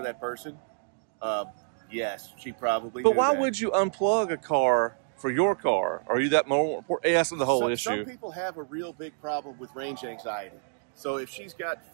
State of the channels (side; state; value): left; silent; digital silence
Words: that person. Yes, she probably. But knew why that. would you unplug a car for your car? Are you that more important? That's the whole issue. Some people have a real big problem with range anxiety. So if she's got